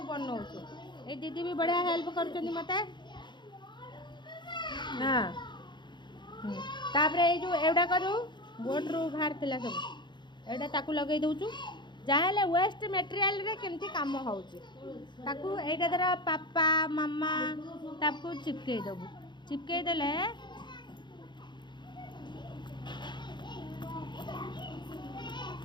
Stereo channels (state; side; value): late; right; 0.22 ms